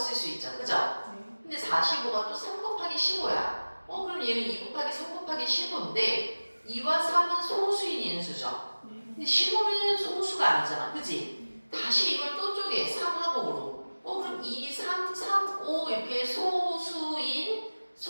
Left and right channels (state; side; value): inverted; both; correlation -1.00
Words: 수 있죠. 그죠? 근데 45가 또 3 곱하기 15야. 그럼 얘는 2 곱하기 3 곱하기 15인데 2와 3은 소수인 인수죠. 근데 15는 소수가 아니잖아. 그지? 다시 이걸 또 쪼개. 3하고 5로. 그럼 2, 3, 3, 5 이렇게 소수인